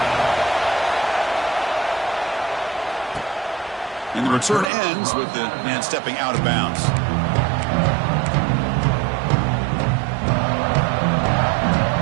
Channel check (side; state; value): left; drops out; at 4.7 s